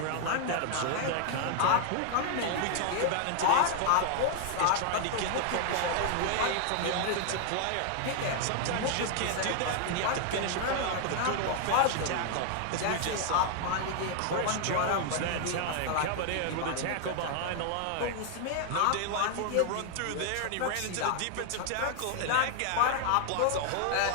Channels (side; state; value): both; different; correlation 0.00